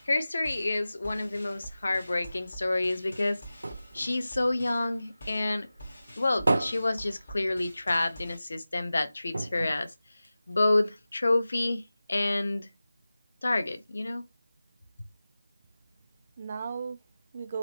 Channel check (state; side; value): inverted; both; correlation -0.96